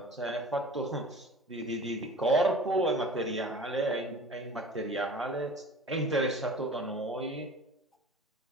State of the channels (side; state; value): both; normal; correlation 0.41